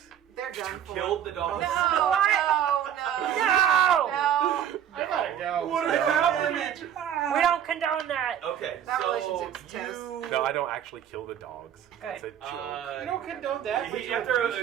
They're done for. Killed the dogs. No, no, no. I gotta go. What So- happened? We don't condone that. Okay, That so relationship's you. toast. No, I don't actually kill the dogs. That's a joke. You don't condone that. but He, you're after a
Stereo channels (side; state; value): left; quieter; 9.9 dB